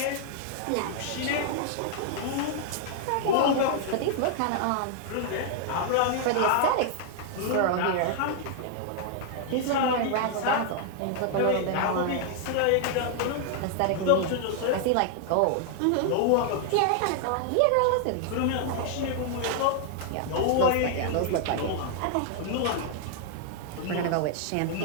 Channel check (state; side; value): different; both; correlation 0.00